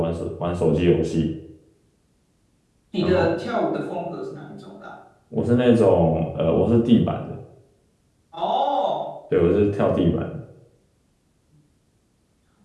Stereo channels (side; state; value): both; identical; correlation 1.00